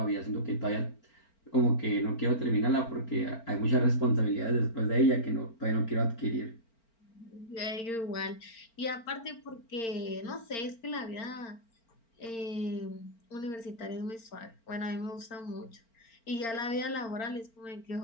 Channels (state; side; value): late; right; 4.4 ms